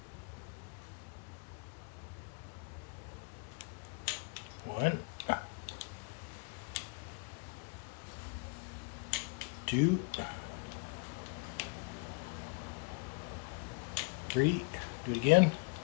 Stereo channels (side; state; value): right; quieter; 32.8 dB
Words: One, two, three. Do it again.